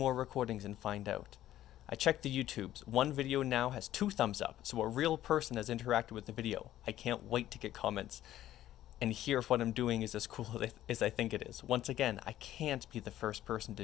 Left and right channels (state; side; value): quieter; right; 13.2 dB